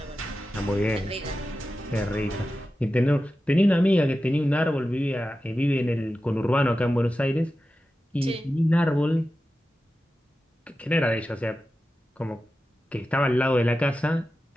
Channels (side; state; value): both; normal; correlation 0.93